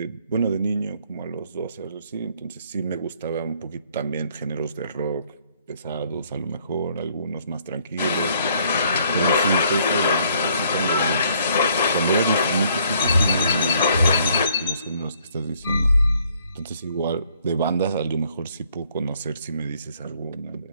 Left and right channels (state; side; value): inverted; both; correlation -0.64